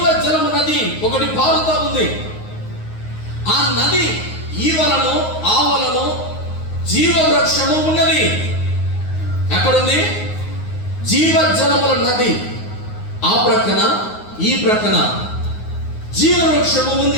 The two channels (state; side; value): late; right; 9.5 ms